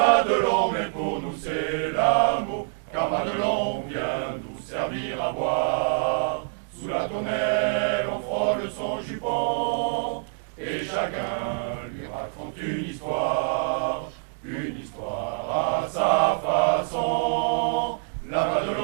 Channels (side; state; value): left; silent; 61 dB below the other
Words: mais pour nous c'est l'amour, car Madelon vient nous servir à boire. Sous la tonnelle, on frôle son jupon, et chacun lui raconte une histoire à sa façon. La